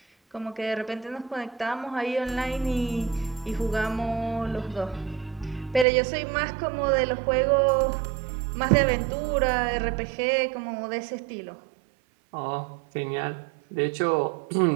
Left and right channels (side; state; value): left; drops out; at 5.9 s